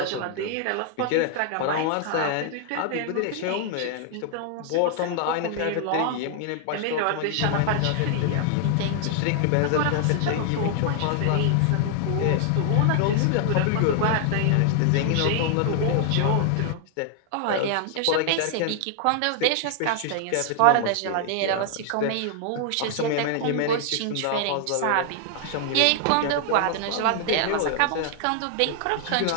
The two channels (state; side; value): different; both; correlation 0.00